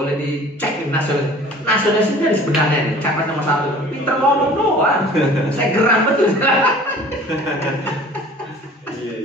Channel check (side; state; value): both; normal; correlation 0.46